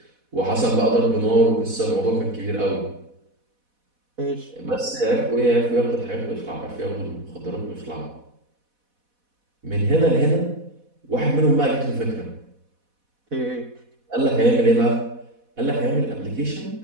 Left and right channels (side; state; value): left; late; 4.1 ms